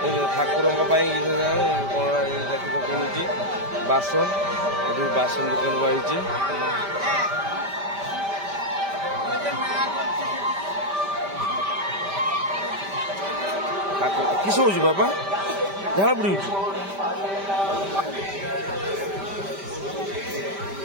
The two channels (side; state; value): left; late; 5.1 ms